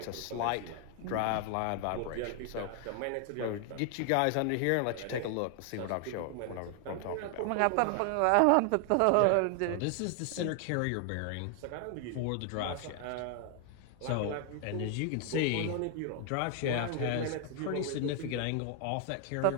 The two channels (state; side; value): different; both; correlation 0.00